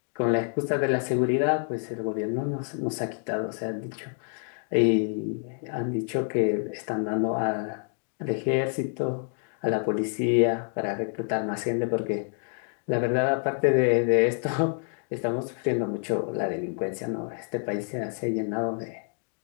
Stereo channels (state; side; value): silent; right; 58 dB below the other